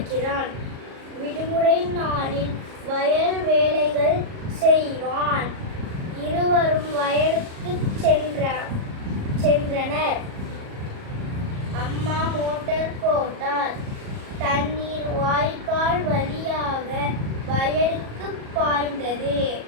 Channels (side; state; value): left; late; 37 ms